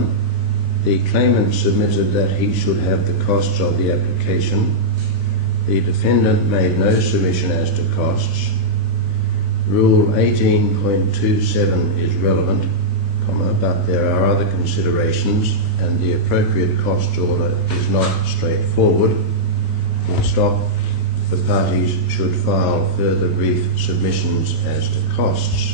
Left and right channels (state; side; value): late; left; 16 ms